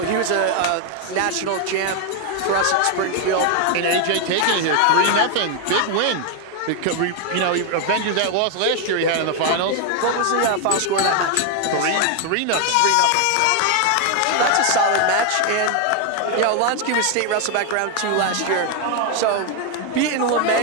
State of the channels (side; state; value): both; different; correlation 0.01